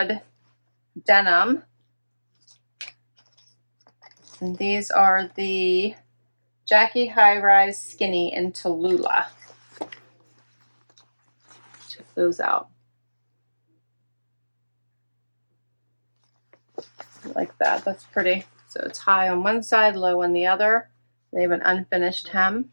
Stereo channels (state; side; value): inverted; both; correlation -1.00